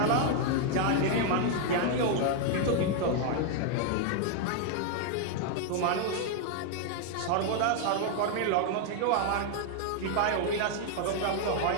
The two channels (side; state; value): both; different; correlation 0.00